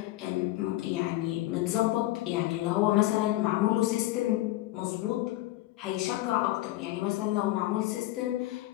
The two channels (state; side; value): quieter; right; 16.9 dB